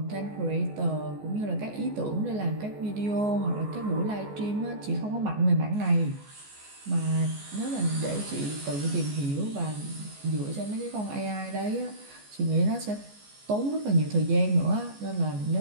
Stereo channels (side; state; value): left; late; 14 ms